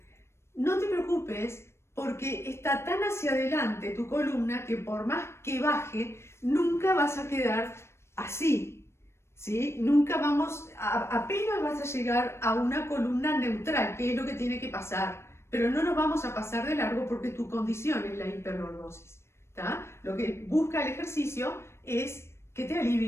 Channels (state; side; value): late; right; 0.13 ms